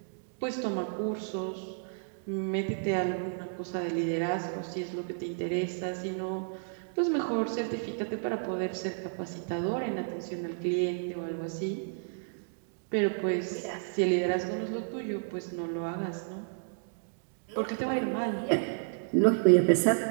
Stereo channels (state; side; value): silent; left; digital silence